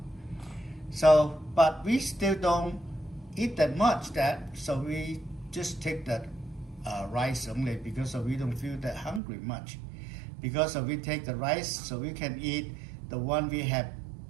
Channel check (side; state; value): left; drops out; at 9.2 s